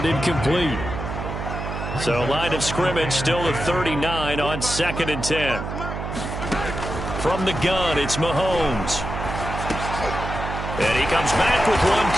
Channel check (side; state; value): right; noise; hum, 6 dB below the sound